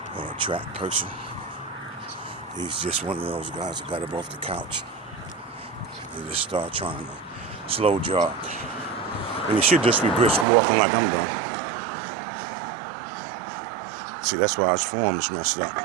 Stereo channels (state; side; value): drops out; left; at 10.5 s